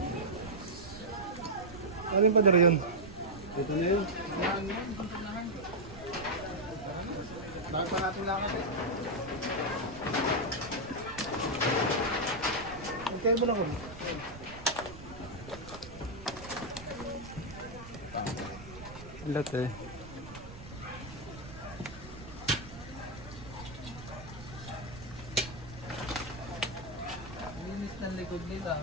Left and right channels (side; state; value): right; noise; rumble, 14 dB below the sound